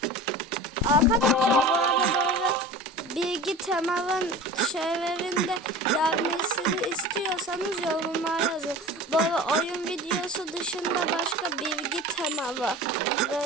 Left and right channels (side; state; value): both; normal; correlation 0.36